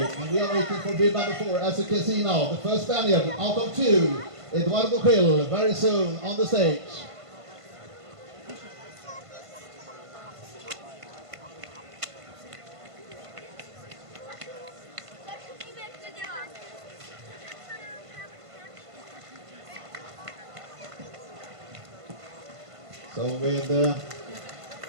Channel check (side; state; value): left; late; 1.5 ms